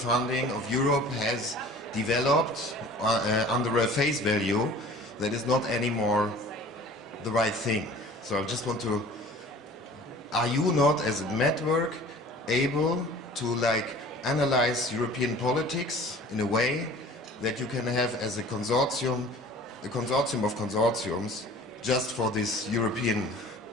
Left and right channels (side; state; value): both; normal; correlation 0.45